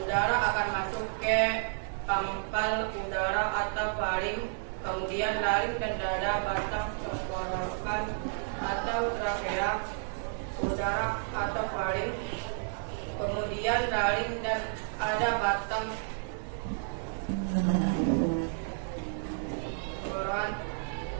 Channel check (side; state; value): left; silent; digital silence